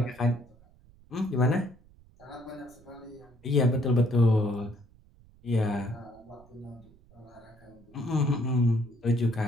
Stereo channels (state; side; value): noise; right; rumble, 27 dB below the sound